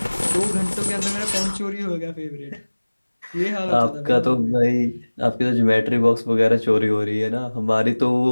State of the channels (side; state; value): both; inverted; correlation -1.00